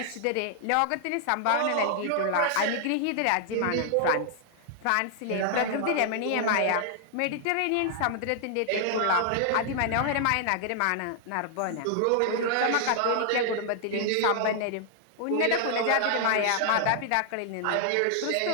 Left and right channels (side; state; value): both; different; correlation 0.00